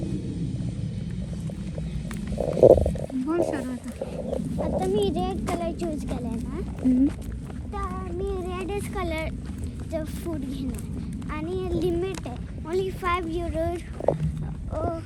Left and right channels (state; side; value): identical; both; correlation 1.00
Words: बोल शरू आता मी रेड कलर चूज केलाय ना, तर मी रेडच कलरचं फूड घेणार आणि लिमिट आहे ओन्ली €5